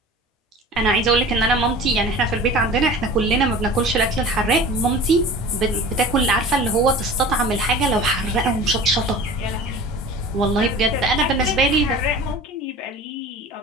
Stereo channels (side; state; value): both; normal; correlation 0.39